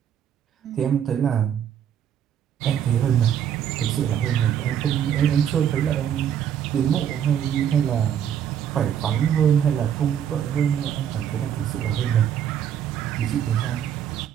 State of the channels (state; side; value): quieter; left; 9.3 dB